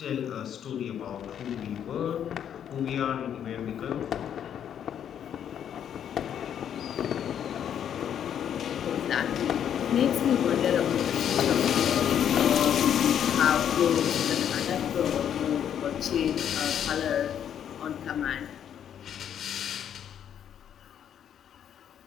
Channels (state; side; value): quieter; right; 9.3 dB